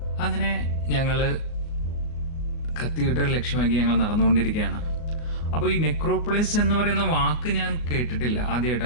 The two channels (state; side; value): late; right; 38 ms